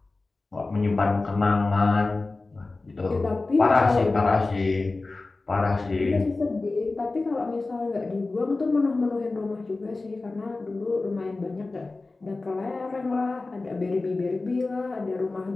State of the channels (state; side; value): quieter; right; 3.4 dB